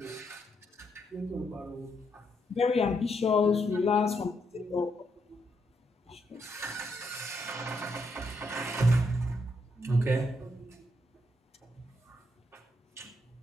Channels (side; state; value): both; normal; correlation 0.78